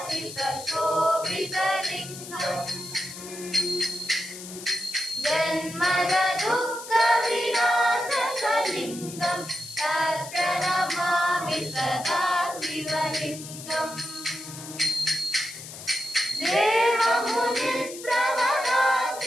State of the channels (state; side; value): noise; left; hiss, 12 dB below the sound